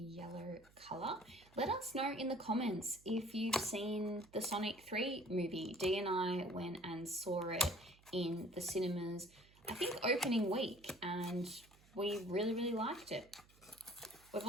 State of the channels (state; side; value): noise; right; hum, 27 dB below the sound